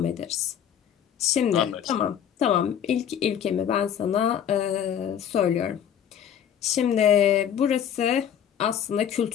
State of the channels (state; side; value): quieter; right; 9.1 dB